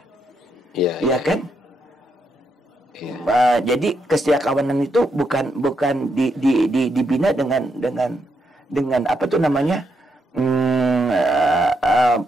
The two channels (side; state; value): both; normal; correlation 0.80